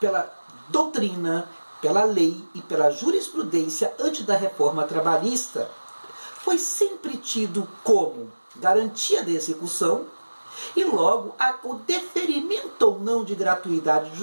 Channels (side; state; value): both; inverted; correlation -1.00